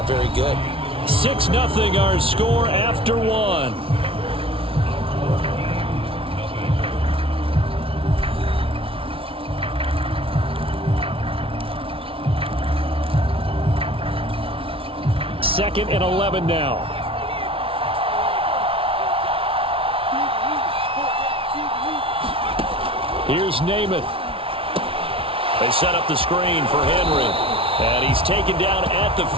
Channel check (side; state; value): left; late; 0.26 ms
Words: very good. 6-0 our score after 1. Second and 11 now. Here's Namath. They set up the screen for Henry. And he's taken down at the